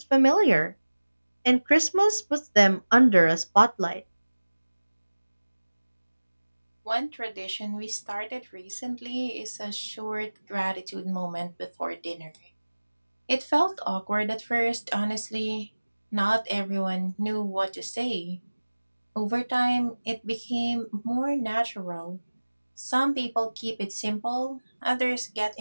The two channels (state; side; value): inverted; both; correlation -1.00